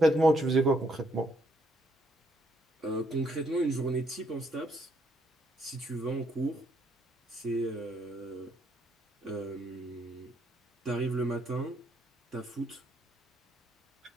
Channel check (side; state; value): both; normal; correlation 0.72